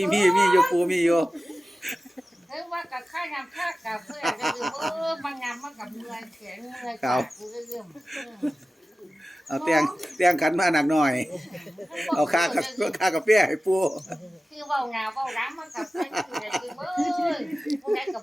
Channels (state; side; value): normal; both; correlation 0.96